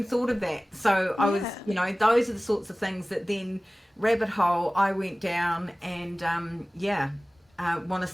thought of that. So I was, those are the sorts of things that then rabbit hole I went down, and want to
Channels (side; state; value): both; normal; correlation 0.98